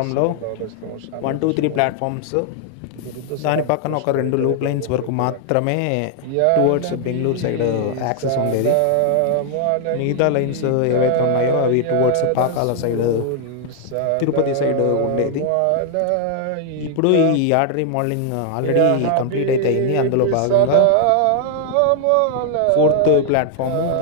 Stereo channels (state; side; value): different; both; correlation 0.00